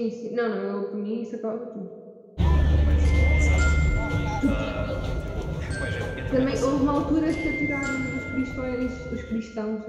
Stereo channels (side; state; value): both; identical; correlation 1.00